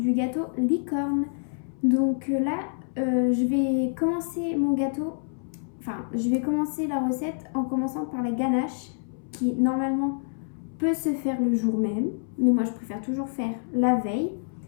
gâteau licorne. Donc là, je vais commencer mon gâteau, je vais commencer la recette en commençant par la ganache qui normalement peut se faire le jour même, mais moi je préfère toujours faire la veille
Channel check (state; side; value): silent; right; 60 dB below the other